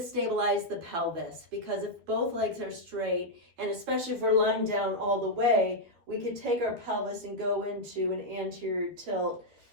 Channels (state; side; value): late; left; 12 ms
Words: the pelvis, because if both legs are straight, and especially if we're lying down all the way, we could take our pelvis and go into an anterior tilt,